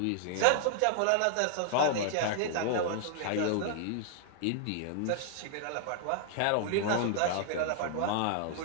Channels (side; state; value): both; different; correlation -0.01